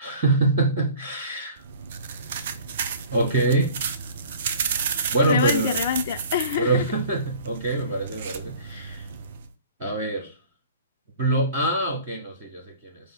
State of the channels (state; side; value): inverted; both; correlation -0.46